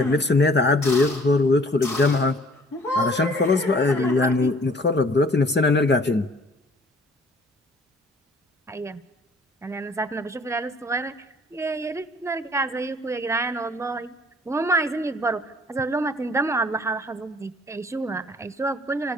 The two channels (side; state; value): both; normal; correlation 0.55